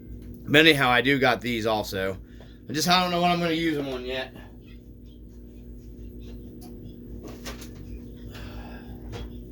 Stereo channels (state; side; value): identical; both; correlation 1.00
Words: anyhow, I do got these also. I don't know what I'm going to use them on yet.